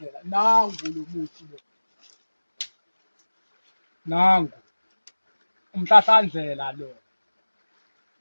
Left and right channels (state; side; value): inverted; both; correlation -1.00